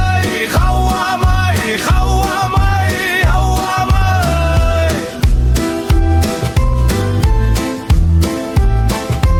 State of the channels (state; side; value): identical; both; correlation 1.00